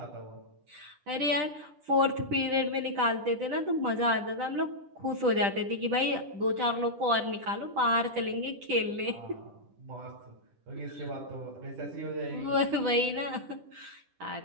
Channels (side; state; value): left; late; 10 ms